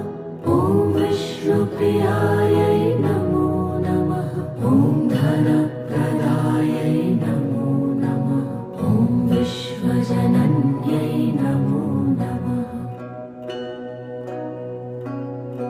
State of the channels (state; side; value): identical; both; correlation 1.00